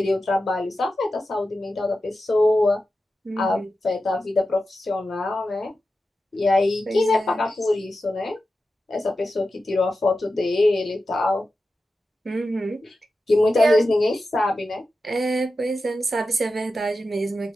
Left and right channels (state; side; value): normal; both; correlation 0.92